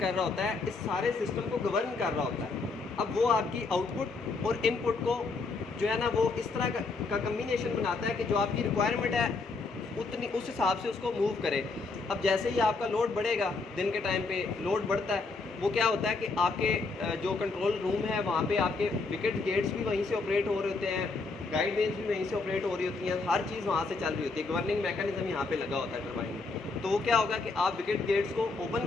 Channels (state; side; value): quieter; right; 3.9 dB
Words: रहा होता है, इस सारे सिस्टम को गवर्न कर रहा होता है। अब वो आपकी आउटपुट और इनपुट को जो है ना, वो इस तरह का कम्बिनेशन बनाता है कि जो आपकी रिक्वायरमेंट है उतनी, उस हिसाब से उसको मूव करे। अब जैसे ही आपका लोड बढ़ेगा, दिन के टाइम पे लोड बढ़ता है, वो क्या होता है कि आपके जो कंट्रोल रूम है वहाँ पे आपके विकेट गेट्स भी वहीं से ऑपरेट हो रहे होते हैं, गाइड वेन्स भी वहीं से ऑपरेट हो रही होती हैं, हर चीज़ वहाँ से चल रही होती है। गवर्निंग मैकेनिज्म यहाँ पे लगा होता है टरबाइन में। तो वो क्या होगा कि आप विकेट गेट्स को ओपन